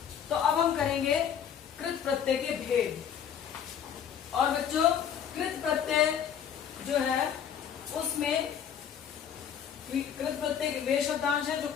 तो अब हम करेंगे कृत प्रत्यय के भेद। और बच्चों कृत प्रत्यय जो है उसमें कृत प्रत्यय वे शब्दांश है जो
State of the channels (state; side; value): quieter; right; 8.5 dB